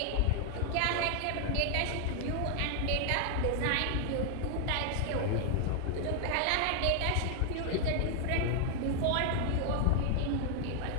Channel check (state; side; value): different; both; correlation 0.00